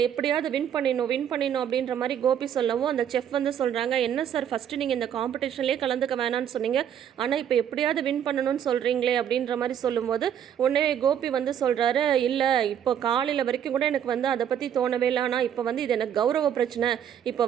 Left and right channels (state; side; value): quieter; left; 9.3 dB